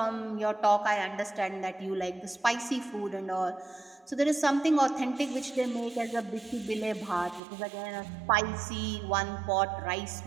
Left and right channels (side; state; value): left; drops out; at 7.4 s